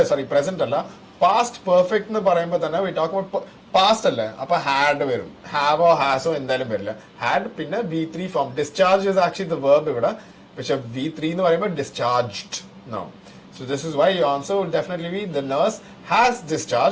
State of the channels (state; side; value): identical; both; correlation 1.00